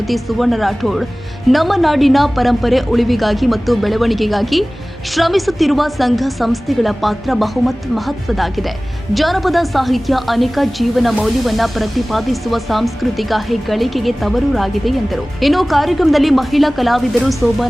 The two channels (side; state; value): both; normal; correlation 0.98